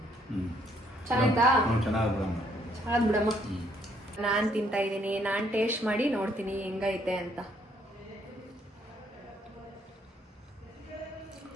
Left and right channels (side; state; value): both; normal; correlation 0.68